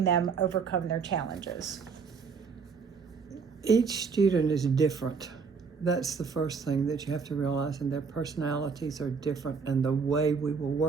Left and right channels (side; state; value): left; quieter; 5.5 dB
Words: them overcome their challenges? Each student is different. That's the first thing that you have to realize, and their personalities are different, and the way we will